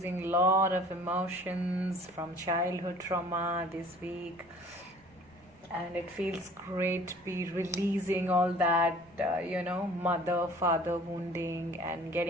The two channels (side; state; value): right; noise; rumble, 29 dB below the sound